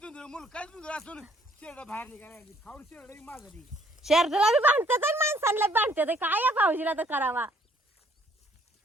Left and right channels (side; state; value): both; normal; correlation 0.63